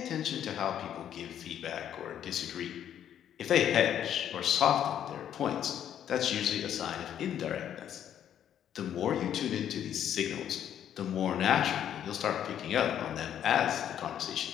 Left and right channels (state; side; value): quieter; right; 10.0 dB